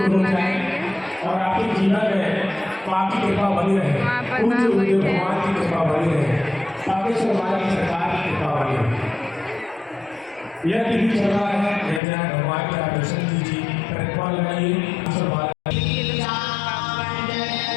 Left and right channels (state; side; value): drops out; right; at 12.0 s